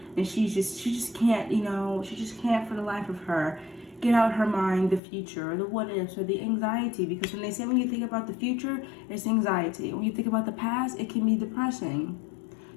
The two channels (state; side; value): drops out; right; at 5.0 s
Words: And she just can't, you know, she just can't for the life of her get out her mind the future or the what ifs or the anxiety. Because when they say when you think about the future, it's anxiety. When you think about the past, it can be depressing.